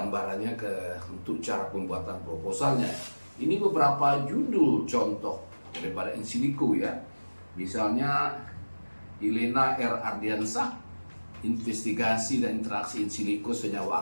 untuk cara pembuatan proposalnya. Ini beberapa judul contoh daripada in silico ya. Misalnya Elena R. Ardiansah, investigasi dan interaksi in silico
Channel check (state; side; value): inverted; both; correlation -1.00